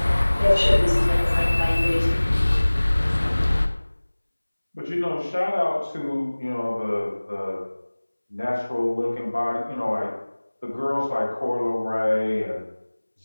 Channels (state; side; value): inverted; both; correlation -1.00